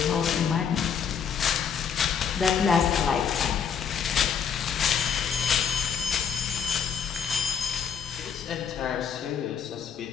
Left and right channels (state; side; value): quieter; right; 7.3 dB